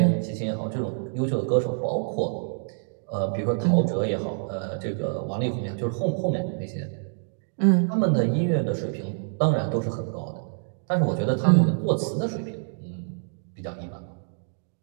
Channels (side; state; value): left; silent; digital silence